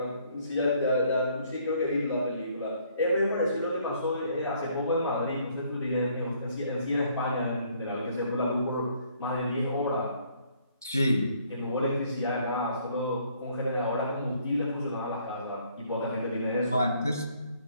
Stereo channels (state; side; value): inverted; both; correlation -0.64